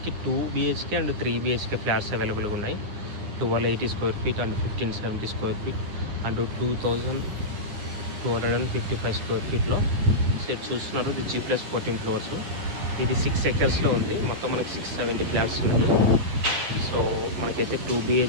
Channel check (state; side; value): late; left; 10 ms